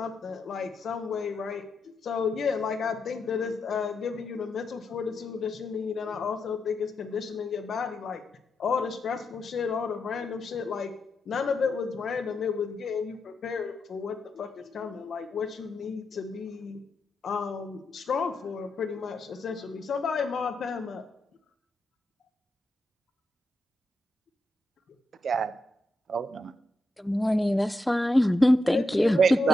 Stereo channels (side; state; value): both; normal; correlation 0.85